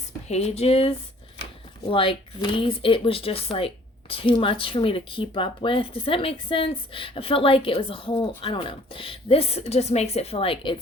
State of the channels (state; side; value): normal; both; correlation 0.55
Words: pages like these, it was just like too much for me to keep up with. Does that make sense? I felt like it was a whole, I don't know. This just makes it feel like